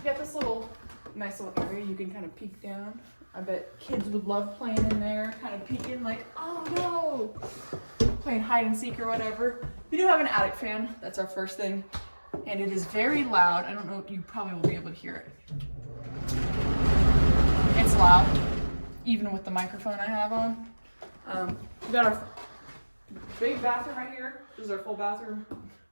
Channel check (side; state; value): both; inverted; correlation -1.00